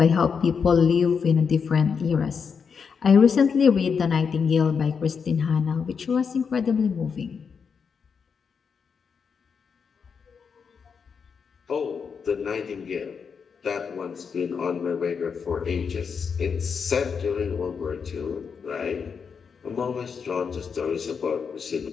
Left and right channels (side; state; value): right; quieter; 6.1 dB